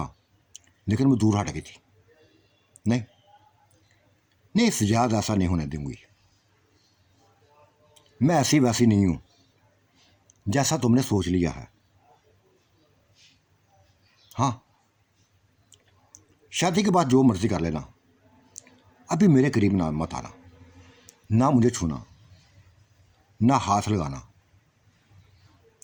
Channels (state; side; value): identical; both; correlation 1.00